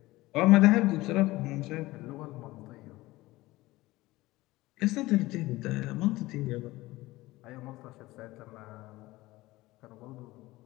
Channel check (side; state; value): right; quieter; 19.0 dB